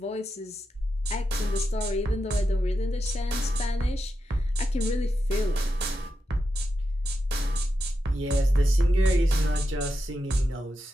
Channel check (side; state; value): both; normal; correlation 0.87